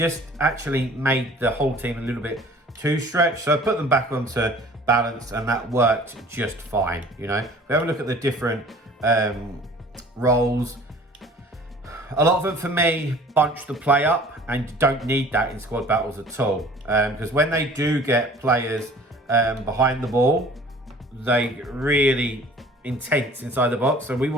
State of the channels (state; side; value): normal; both; correlation 0.49